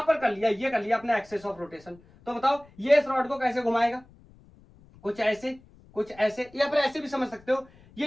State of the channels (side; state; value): left; noise; rumble, 26 dB below the sound